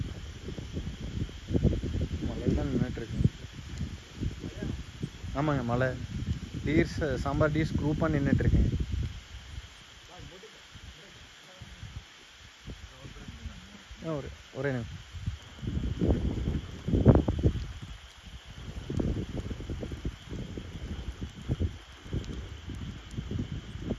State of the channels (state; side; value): identical; both; correlation 1.00